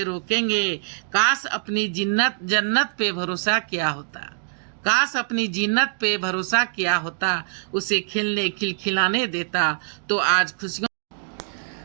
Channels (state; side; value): silent; left; digital silence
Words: रोकेंगे। काश अपनी जन्नत पे भरोसा किया होता, काश अपनी जिन्नत पे भरोसा किया होता, उसे खिलखिलाने देता तो आज